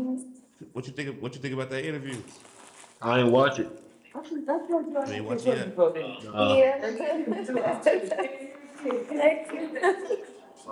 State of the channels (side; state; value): both; identical; correlation 1.00